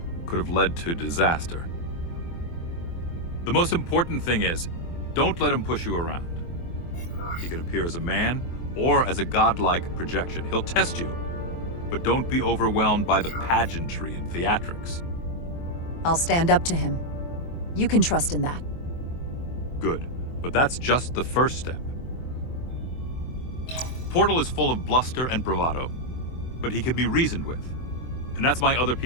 could have led to disaster. The most important thing is, don't let him push you around. He can appear as a man or as a godlike projection. He'll test you, but don't be overwhelmed by the pageantry and theatrics. I'll stand up to him. You can trust in that. Good, but that's just the first step. Portal is full of bluster and bravado, but he can be reasoned with. And that's my other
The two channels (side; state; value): right; late; 24 ms